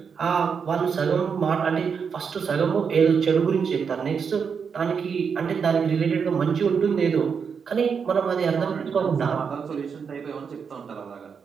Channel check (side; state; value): left; quieter; 6.3 dB